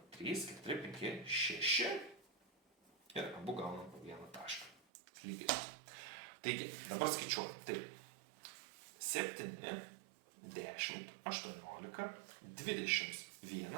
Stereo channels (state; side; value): drops out; left; at 4.8 s